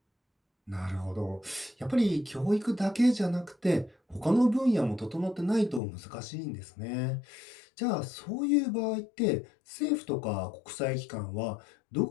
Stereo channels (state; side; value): drops out; right; at 5.8 s